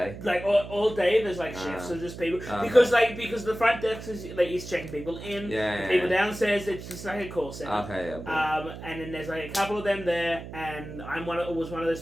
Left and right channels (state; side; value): noise; right; hum, 11 dB below the sound